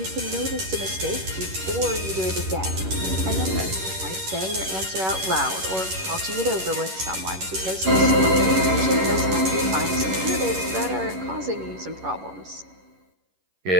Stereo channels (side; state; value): left; late; 11 ms